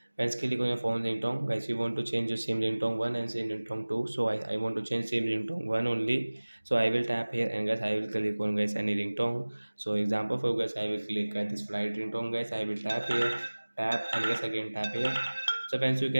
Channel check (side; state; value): both; inverted; correlation -1.00